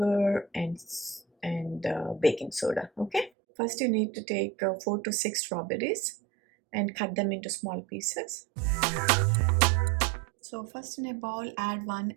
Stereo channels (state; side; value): drops out; left; at 3.3 s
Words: and baking soda. Okay, first you need to take 4 to 6 strawberries and cut them into small pieces. So first in a bowl add 1